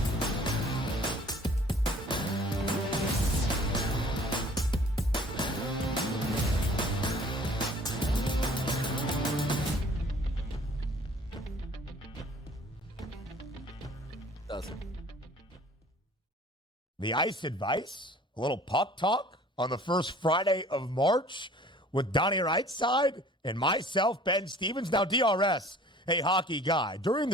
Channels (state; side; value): normal; both; correlation 0.51